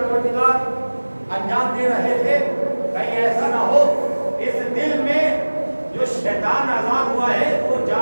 انجام دے رہے تھے، کہیں ایسا نہ ہو اس دل میں جو شیطان آزاد ہوا ہے وہ جا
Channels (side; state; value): both; inverted; correlation -1.00